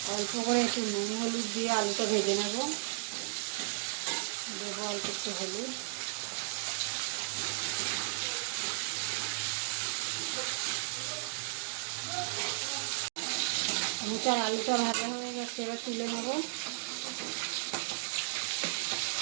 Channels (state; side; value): silent; left; digital silence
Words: অল্প করে একটু নুন হলুদ দিয়ে আলুটা ভেজে নেব। দেবো অল্প একটু হলুদ। মোটার আলুটা ভাজা হয়ে গেছে, এবার তুলে নেব।